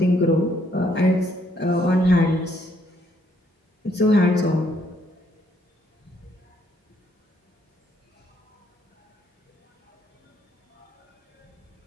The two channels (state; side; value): normal; both; correlation 0.70